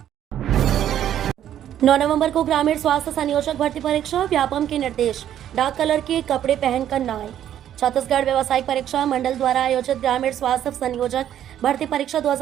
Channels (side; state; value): left; quieter; 10.8 dB